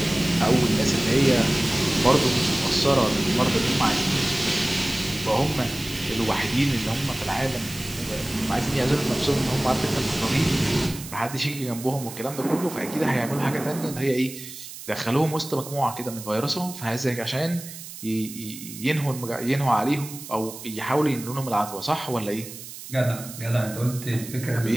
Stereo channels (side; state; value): right; noise; hiss, 13 dB below the sound